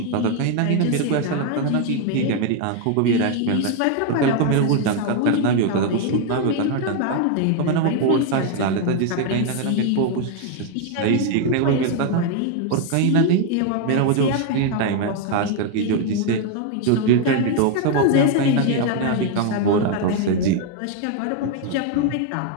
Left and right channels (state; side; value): different; both; correlation 0.01